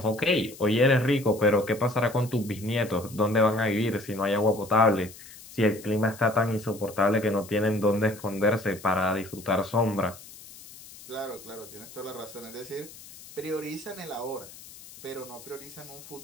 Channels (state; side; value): noise; left; hiss, 18 dB below the sound